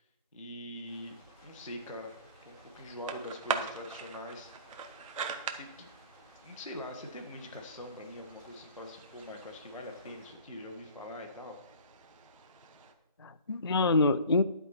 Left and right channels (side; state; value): both; inverted; correlation -0.46